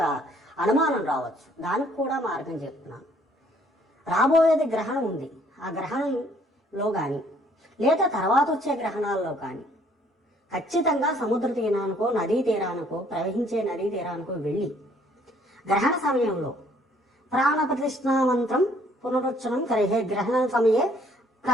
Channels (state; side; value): normal; both; correlation 0.62